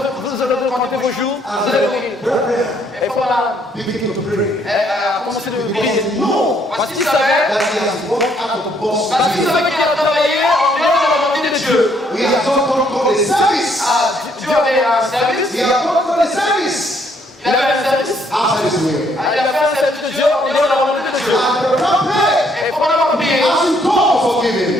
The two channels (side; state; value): both; normal; correlation 0.69